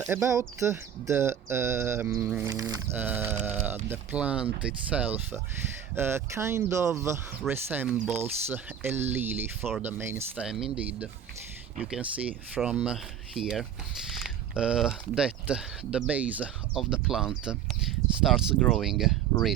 the plant itself, kind of resembles a lily for the main stem. Indeed, you can see from here that the base of the plant starts growing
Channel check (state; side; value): quieter; left; 9.1 dB